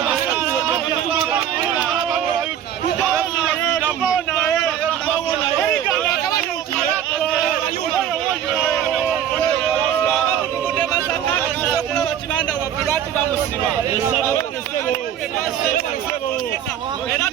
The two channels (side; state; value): left; quieter; 9.9 dB